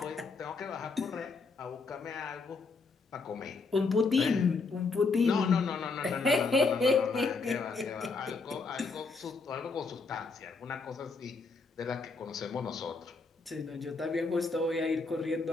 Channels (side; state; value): right; quieter; 4.2 dB